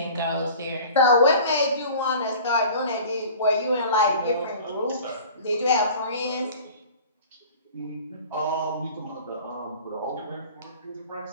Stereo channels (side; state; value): both; inverted; correlation -0.43